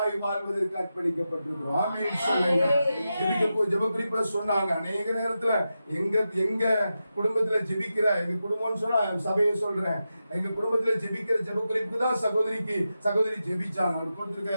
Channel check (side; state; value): both; inverted; correlation -0.90